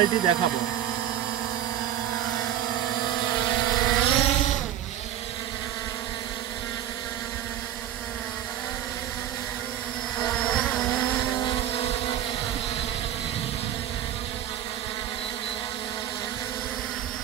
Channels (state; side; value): quieter; left; 11.6 dB